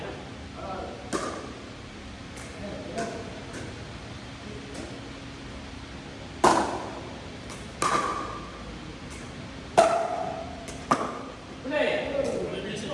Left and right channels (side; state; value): both; identical; correlation 1.00